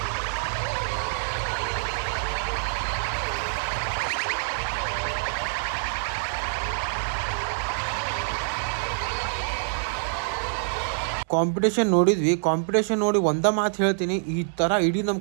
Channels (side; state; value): left; silent; 60 dB below the other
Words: ಕಾಂಪಿಟೇಷನ್ ನೋಡಿದ್ವಿ. ಕಾಂಪಿಟೇಷನ್ ನೋಡಿ ಒಂದ ಮಾತು ಹೇಳ್ತೀನಿ, ಈ ತರ ಇಡೀ